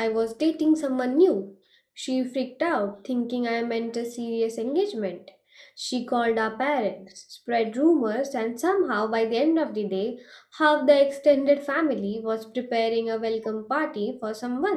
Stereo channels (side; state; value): both; identical; correlation 1.00